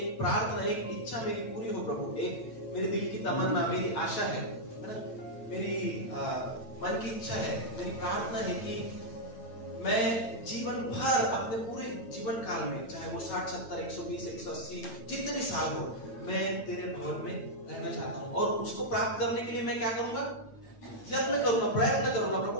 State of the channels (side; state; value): right; late; 8.8 ms